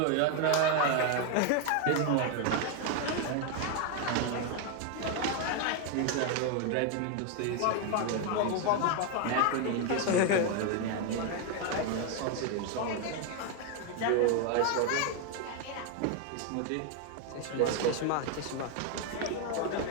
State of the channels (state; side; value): different; both; correlation 0.01